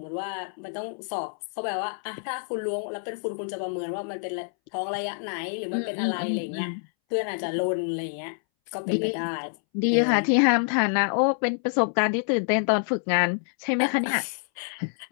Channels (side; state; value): right; silent; 60 dB below the other